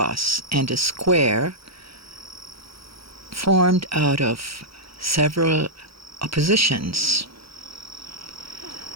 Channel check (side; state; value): left; late; 0.75 ms